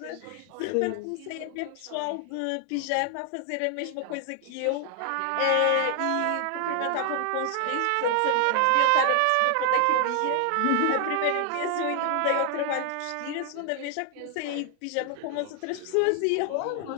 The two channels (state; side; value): different; both; correlation 0.00